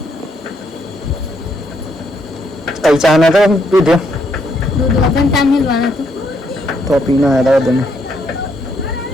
કઈ ચા ના તો પીધો દૂધ વગર તા મિલવાના તો પીના હતા તમે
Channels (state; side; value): normal; both; correlation 0.73